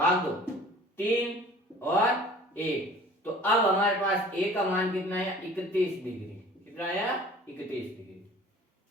दो 3 और 1। तो अब हमारे पास a का मान कितना है, 31 डिग्री। कितना आया, 31 डिग्री।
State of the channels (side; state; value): both; normal; correlation 0.47